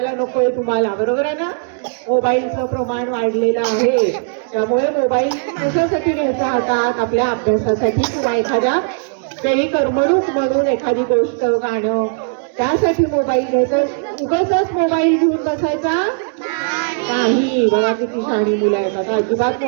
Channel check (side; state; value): left; silent; 68 dB below the other